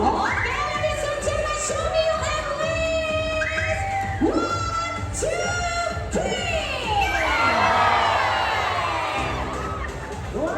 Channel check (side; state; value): both; identical; correlation 1.00